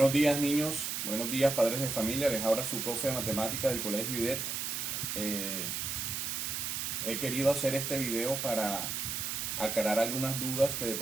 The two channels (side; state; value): right; noise; hiss, 2 dB below the sound